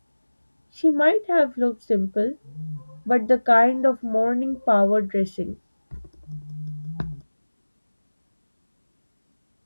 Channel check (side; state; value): both; inverted; correlation -1.00